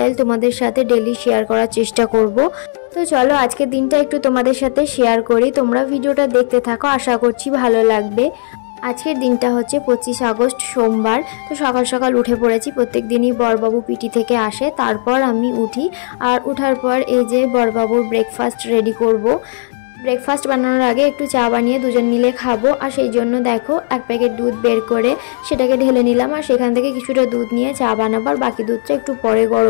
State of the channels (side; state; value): right; silent; digital silence